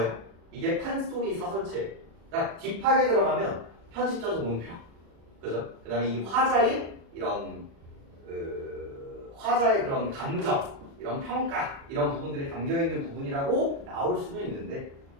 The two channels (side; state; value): left; late; 36 ms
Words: 이게 판소리 사설체. 그러니까 딥하게 들어가면 편집자적 논평. 그죠? 그 다음에 이 화자의 이런, 화자의 그런 감정, 이런 평가, 이런 부분들이 담겨있는 부분이라고 나올 수는 있는데,